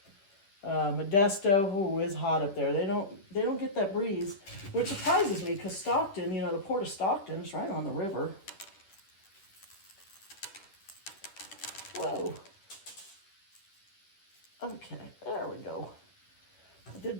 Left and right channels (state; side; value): late; right; 10 ms